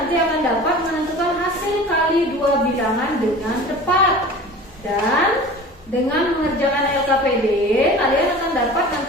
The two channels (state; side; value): normal; both; correlation 0.39